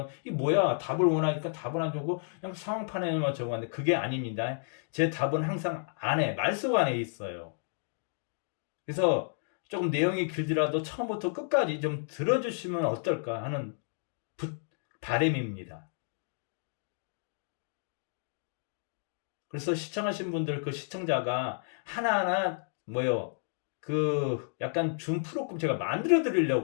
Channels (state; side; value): silent; right; digital silence